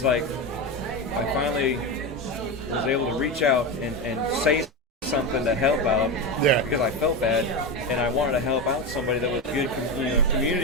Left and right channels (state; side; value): normal; both; correlation 0.16